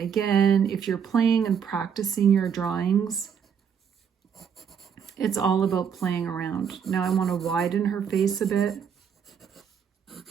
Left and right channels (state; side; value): quieter; left; 7.4 dB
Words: if you're playing and practicing your drawings, it's all about playing around. Now I want to widen her face a bit.